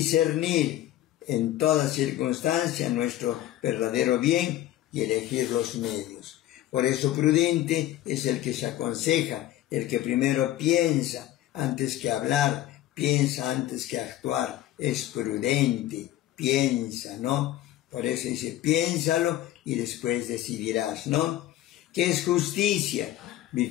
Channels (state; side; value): quieter; right; 13.8 dB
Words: en toda circunstancia nuestro verdadero bien y elegir los medios. Por eso prudente es el que se aconseja, el que primero piensa antes que hablar, piensa antes que actuar, es prudente, piensa, ¿no? Por eso dice, piénsalo y después decidirás, ¿no? ¿Qué es justicia?